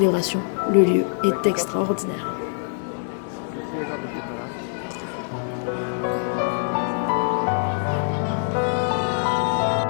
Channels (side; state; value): right; silent; 63 dB below the other